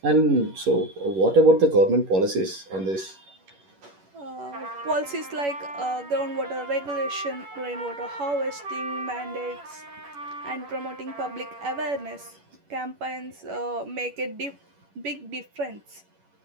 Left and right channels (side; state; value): left; late; 11 ms